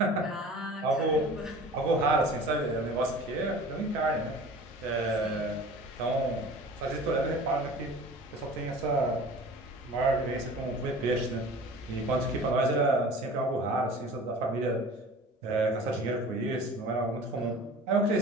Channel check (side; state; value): both; normal; correlation 0.42